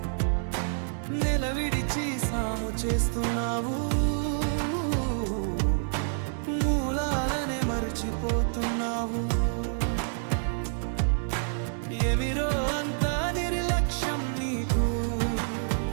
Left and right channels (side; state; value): left; silent; digital silence